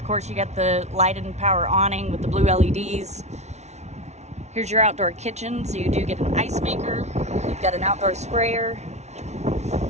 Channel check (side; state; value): left; late; 0.32 ms